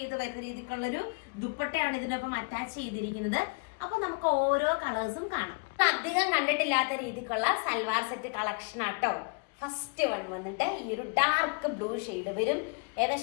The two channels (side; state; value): right; quieter; 35.0 dB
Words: വരുന്ന രീതിക്കുള്ളൊരു ദുപ്പട്ടയാണ് ഇതിനൊപ്പം അറ്റാച്ച് ചെയ്തിരിക്കുന്നത്. അപ്പൊ നമുക്ക് ഓരോ കളേഴ്സും കാണാം. അധികം കണ്ടിട്ടില്ലാത്ത രീതിക്കുള്ള സൽവാർ സെറ്റ് കളക്ഷൻ ആട്ടോ. ഫസ്റ്റ് വൺ വന്നിട്ട് ഈ ഒരു ഡാർക്ക് ബ്ലൂ ഷെയ്ഡ് വരും.